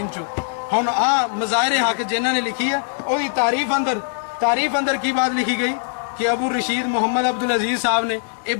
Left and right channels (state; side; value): silent; right; digital silence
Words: چوں. ہن آ مظاہر حق جنہاں نے لکھی ہے وہی تعریف اندر کی بات لکھی گئی کہ ابو رشید محمد عبدالعزیز صاحب نے یہ